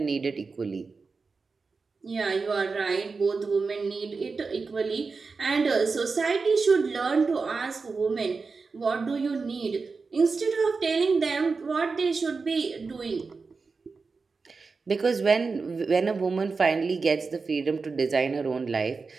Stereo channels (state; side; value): quieter; left; 4.5 dB